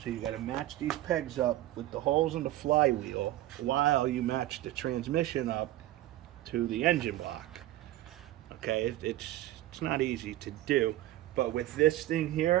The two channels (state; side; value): quieter; left; 15.0 dB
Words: So you got to match these pegs up with the holes in the flywheel while you match the transmission up to the engine block. Okay, it's not easy to do, But with this thing